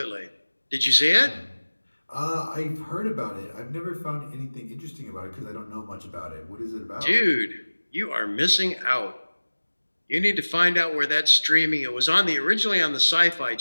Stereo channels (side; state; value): both; inverted; correlation -1.00